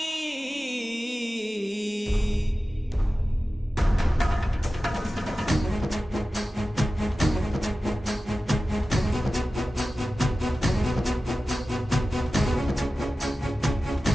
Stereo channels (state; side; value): normal; both; correlation 0.95